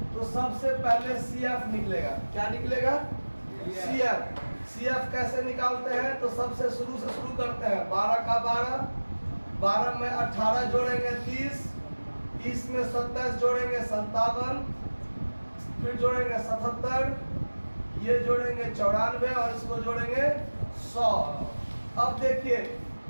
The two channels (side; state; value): both; inverted; correlation -1.00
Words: तो सबसे पहले CF निकलेगा। क्या निकलेगा? CF। CF कैसे निकालते हैं? तो सबसे शुरू से शुरू करते हैं। 12 का 12, 12 में 18 जोड़ेंगे 30, 30 में 27 जोड़ेंगे 57, फिर जोड़ेंगे 77, ये जोड़ेंगे 94 और इसको जोड़ेंगे 100। अब देखिए